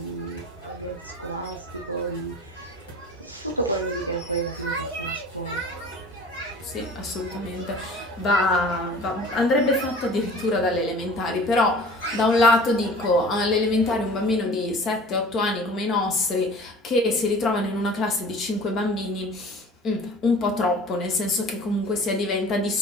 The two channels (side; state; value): both; normal; correlation 0.44